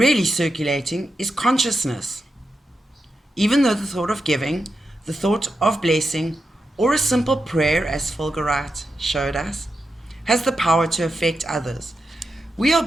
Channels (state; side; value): normal; both; correlation 0.88